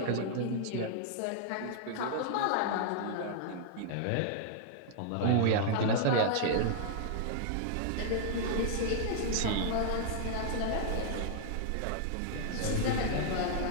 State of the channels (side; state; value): both; different; correlation -0.01